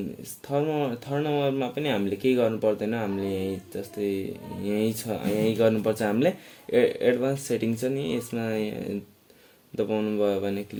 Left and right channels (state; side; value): identical; both; correlation 1.00